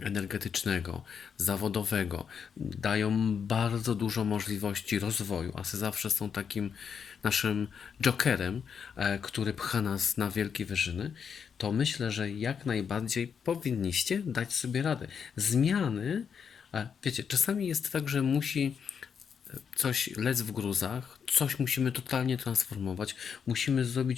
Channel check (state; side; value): quieter; right; 6.9 dB